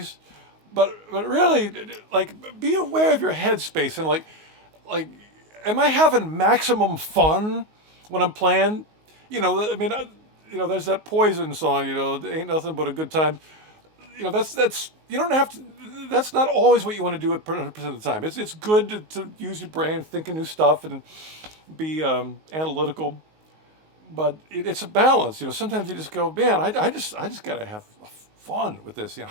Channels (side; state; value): left; late; 19 ms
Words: But really, like, be aware of your headspace and like, am I having maximum fun when I'm playing? There's that Poison song. Ain't nothing but a good time. That's you don't have to. That's not always what you want to do at 100% of the time. It's good to use your brain, think of new stuff, and be analytical. But it's a balance. Sometimes you just go, man, I just gotta have fun with this.